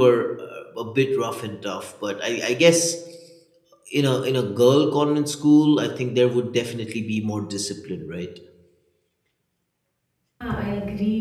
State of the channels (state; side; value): identical; both; correlation 1.00